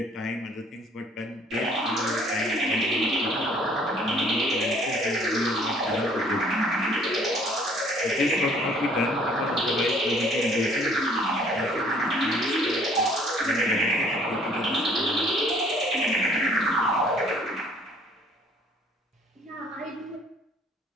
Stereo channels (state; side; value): normal; both; correlation 0.58